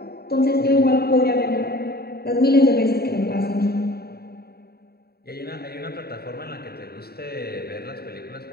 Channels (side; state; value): right; late; 0.46 ms